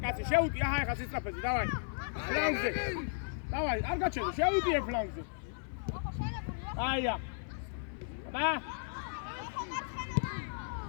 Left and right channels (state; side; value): silent; right; 54 dB below the other